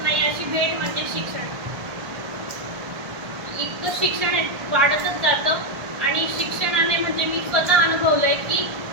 नाही अशी भेट म्हणजे शिक्षण. इतकं शिक्षण वाढतच जातं आणि शिक्षणाने म्हणजे मी स्वतः अनुभवलंय की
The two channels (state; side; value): late; left; 1.4 ms